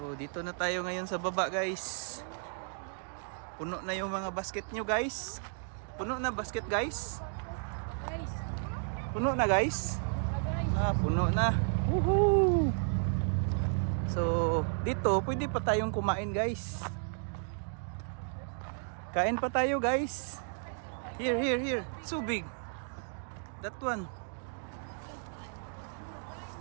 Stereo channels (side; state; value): left; silent; 56 dB below the other